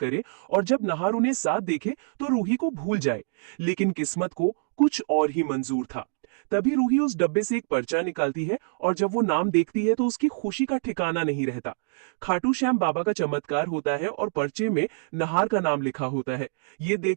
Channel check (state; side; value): silent; left; digital silence